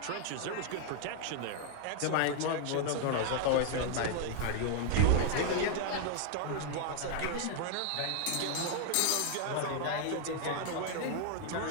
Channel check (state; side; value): different; both; correlation 0.00